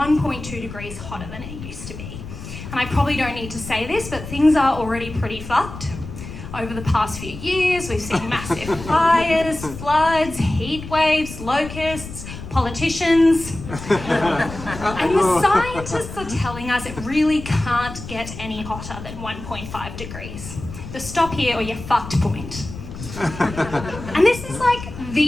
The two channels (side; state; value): left; noise; rumble, 11 dB below the sound